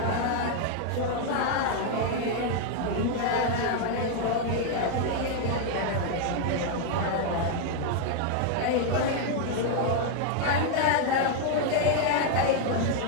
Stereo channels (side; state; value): both; different; correlation 0.00